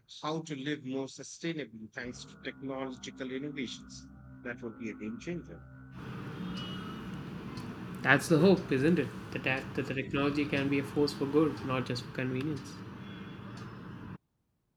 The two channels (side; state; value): both; identical; correlation 1.00